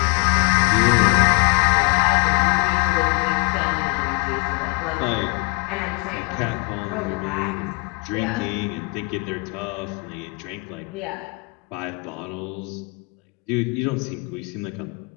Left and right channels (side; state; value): right; quieter; 31.3 dB